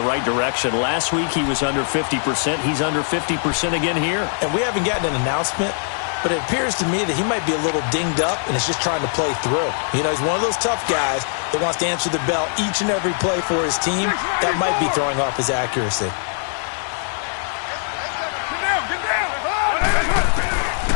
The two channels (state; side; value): silent; right; digital silence